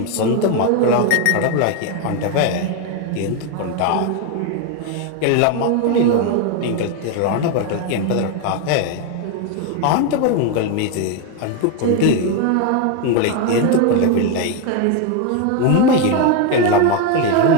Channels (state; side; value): different; both; correlation 0.02